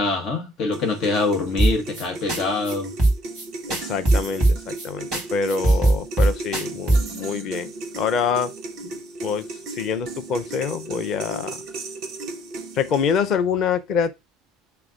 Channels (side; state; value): both; normal; correlation 0.66